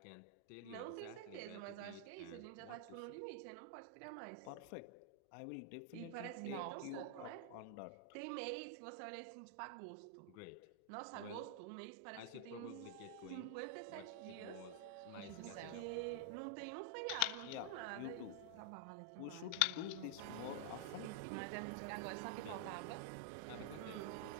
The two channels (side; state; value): both; different; correlation 0.00